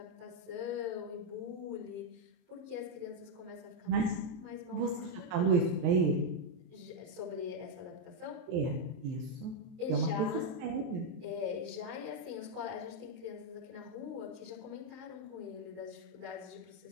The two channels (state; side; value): late; left; 23 ms